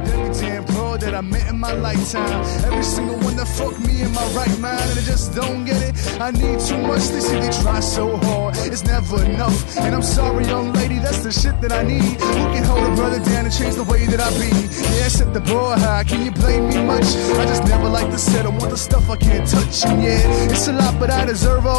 every damn bro that I met in my lifetime. Every single one that fucked me in my right mind, and I just don't get it. I need too much. They say they try so hard, it's never enough. And I'm sorry, young lady, that's the shit that I need. Who can hold a brother down and change the way that I be? Yeah, set the bar high. Can you blame me much? I just never like to settle. Want the stuff I can't touch. And yeah, it's a lot, but I deserve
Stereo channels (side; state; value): right; silent; 60 dB below the other